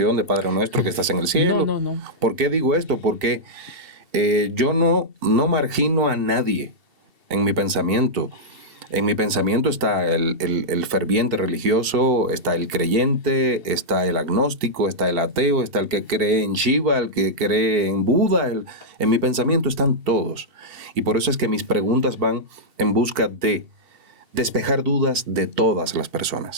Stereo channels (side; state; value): left; late; 2.7 ms